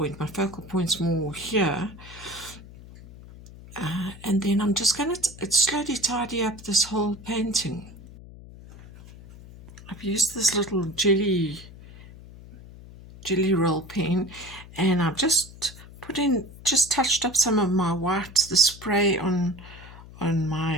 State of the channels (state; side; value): noise; left; hum, 18 dB below the sound